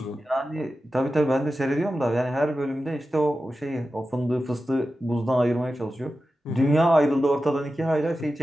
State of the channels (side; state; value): both; normal; correlation 0.93